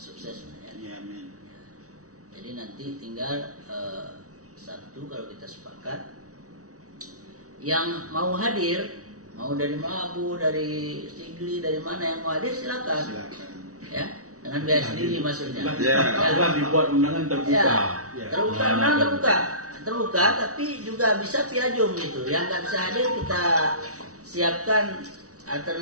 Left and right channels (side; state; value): left; late; 0.66 ms